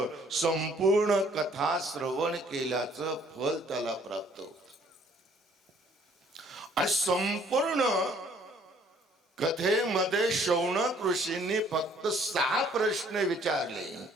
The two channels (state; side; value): normal; both; correlation 0.60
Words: संपूर्ण कथा श्रवण केल्याचं फल त्याला प्राप्त होत. आणि संपूर्ण कथेमध्ये शौनक ऋषींनी फक्त 6 प्रश्न विचारले